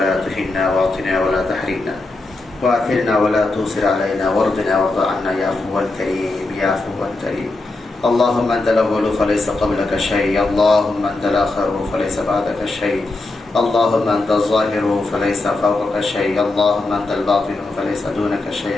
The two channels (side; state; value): right; quieter; 3.1 dB